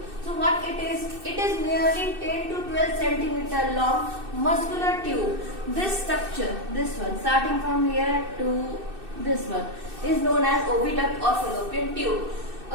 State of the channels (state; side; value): late; left; 2.6 ms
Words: So what it is nearly 10 to 12 centimeter long muscular tube. This structure, this one, starting from here to this one, is known as oviduct or fallopian tube.